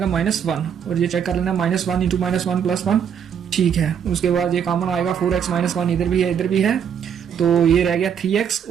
-1, और ये चेक कर लेना -1 × -1 + 1 ठीक है। उसके बाद ये कॉमन आएगा 4x -1, इधर भी है इधर भी है, तो ये रह गया 3x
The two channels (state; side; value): quieter; left; 8.0 dB